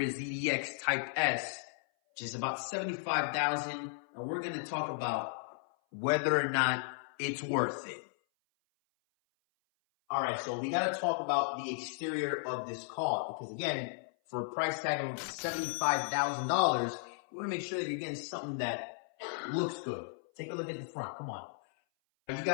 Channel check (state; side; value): silent; right; 54 dB below the other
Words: Type S, which is about $75,000, and we're going to talk about whether or not it's worth it. All right, so we got to talk about the exterior of this car because, again, for a price tag of $75,000, you want to make sure that you're getting something that looks good. Take a look at the front. Come on. You